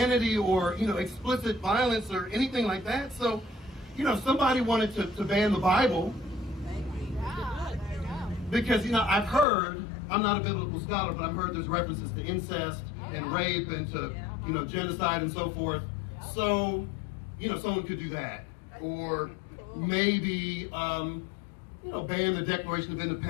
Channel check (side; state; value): right; drops out; at 9.5 s